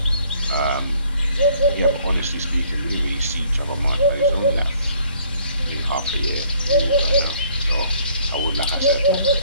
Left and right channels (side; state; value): both; inverted; correlation -0.61